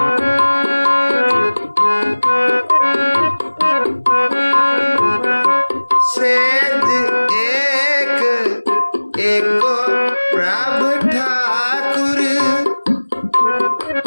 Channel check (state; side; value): inverted; both; correlation -1.00